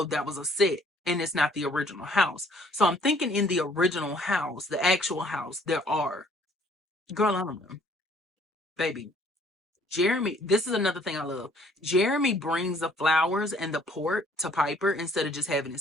that was a set and it's not the original house. So I'm thinking in the original house, the actual house, there are. Girl, I don't know. Baby, Jeremy, this is another thing I love. Jeremy brings the flowers and the port to Piper instead of just having it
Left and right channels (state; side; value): normal; both; correlation 0.60